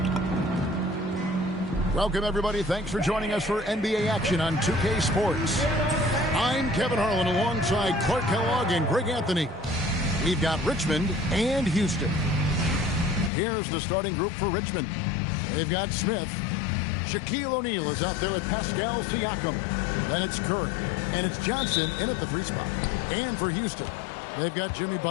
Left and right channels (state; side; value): drops out; right; at 13.3 s